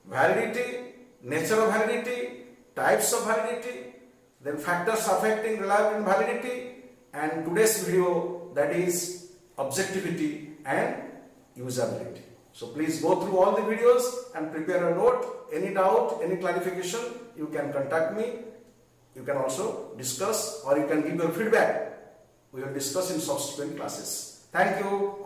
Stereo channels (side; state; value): both; identical; correlation 1.00